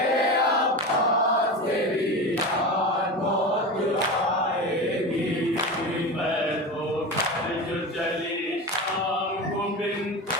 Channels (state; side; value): normal; both; correlation 0.25